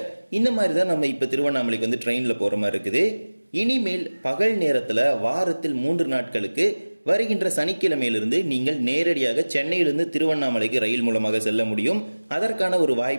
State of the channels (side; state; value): both; inverted; correlation -1.00